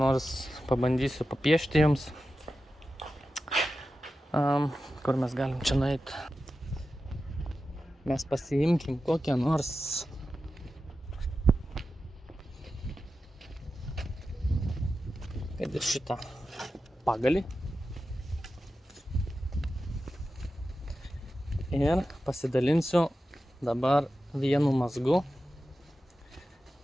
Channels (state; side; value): normal; both; correlation 0.92